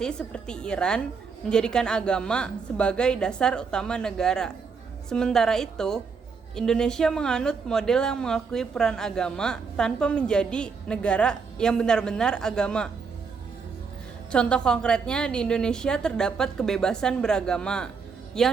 seperti Iran menjadikan agama sebagai dasar utama negara. Sementara itu, Indonesia menganut model yang mengakui peran agama tanpa menjadi negara yang benar-benar agama. Contoh konkretnya, di Indonesia terdapat kebebasan beragama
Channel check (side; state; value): left; quieter; 5.4 dB